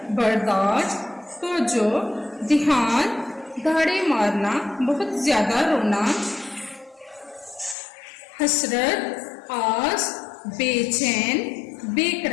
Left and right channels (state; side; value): drops out; right; at 7.8 s